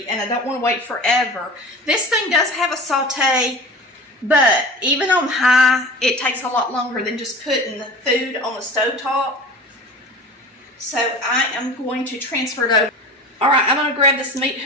and I don't want to wait forever. This thing does have a saute, but even on high, it takes a lot longer than just putting the food on the stovetop. So I am going to transfer it over. All right, I'm going to grab this meat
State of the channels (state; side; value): normal; both; correlation 0.36